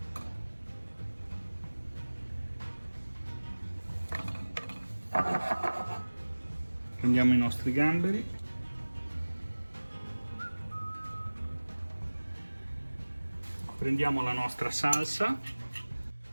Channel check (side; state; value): both; inverted; correlation -1.00